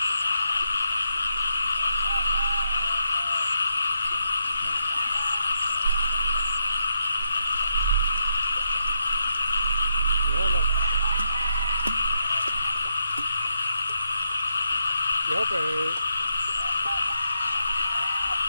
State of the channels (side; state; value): both; inverted; correlation -0.81